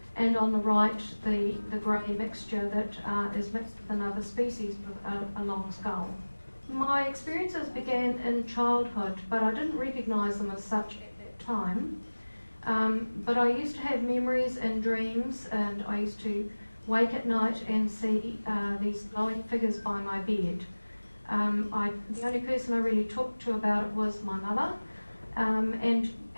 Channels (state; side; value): inverted; both; correlation -1.00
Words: And on the right, the grey mixture that is mixed with another species with a long skull. My experiences began in childhood, but I didn't recognise them as such at that time. But I used to have memories and dreams, and I used to wake at night and see these glowing figures by my bed. The only person I really talked to about it was my mother, and